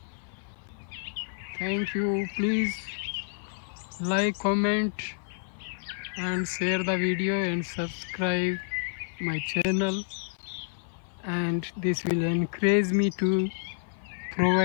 Thank you. Please like, comment and share the video and subscribe my channel, and this will encourage me to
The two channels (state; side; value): silent; right; 58 dB below the other